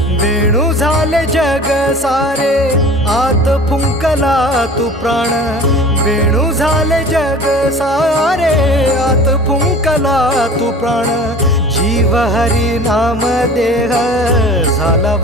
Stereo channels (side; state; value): both; normal; correlation 0.42